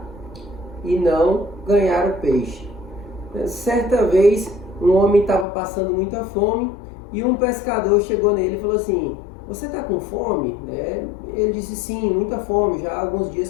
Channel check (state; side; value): drops out; right; at 5.5 s